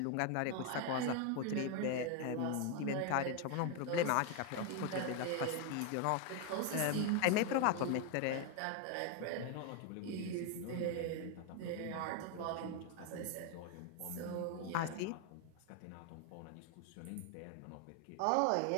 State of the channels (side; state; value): both; different; correlation 0.01